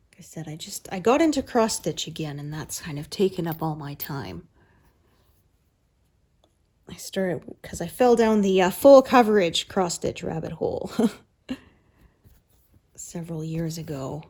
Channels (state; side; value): identical; both; correlation 1.00